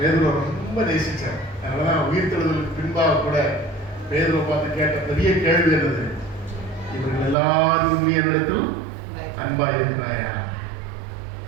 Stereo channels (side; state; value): left; drops out; at 7.4 s